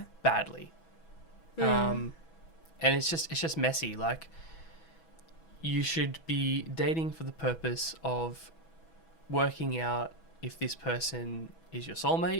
badly. And it's just messy. Like, you should be dating for the purpose of working out if this person is your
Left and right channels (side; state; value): right; late; 6.1 ms